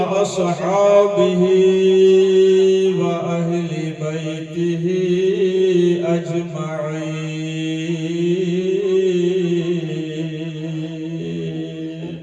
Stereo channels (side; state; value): both; identical; correlation 1.00